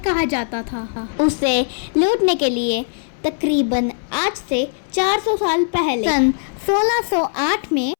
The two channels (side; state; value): right; silent; 66 dB below the other